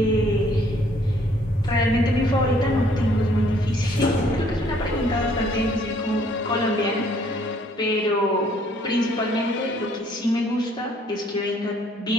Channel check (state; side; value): normal; both; correlation 0.63